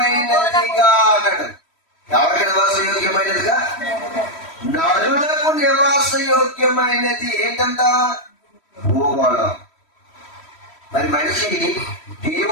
అన్నాడు. ఎవరికి నివాసయోగ్యమైనదిగా? నరులకు నివాసయోగ్యమైనది ఏంటంట? భూగోళం. మరి మనిషి,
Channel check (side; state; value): right; late; 3.1 ms